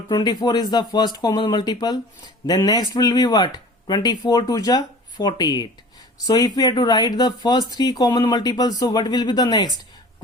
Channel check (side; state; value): both; normal; correlation 0.43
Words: 24 is the first common multiple. Then next will be what? 24 2 ja 48. So if we have to write the first three common multiples, so what will be the next?